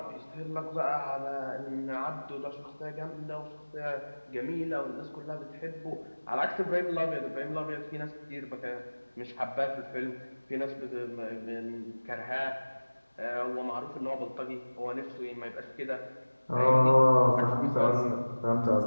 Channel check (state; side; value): inverted; both; correlation -1.00